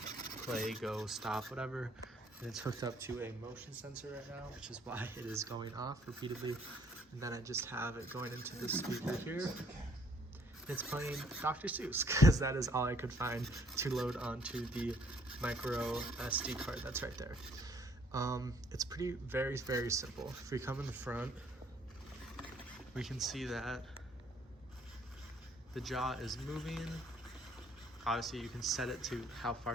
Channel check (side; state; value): both; normal; correlation 0.63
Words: go, stop, whatever. And it's hooked up to a motion sensor right now, which is why it is going off repeatedly. And then I just have it going into this speaker here. And it's playing Dr. Seuss, because that is all I could find to load onto the micro SD card that's right there. It's very, very simple. If we come in the front, we can see that the jaw is moving. Obviously you can set it to how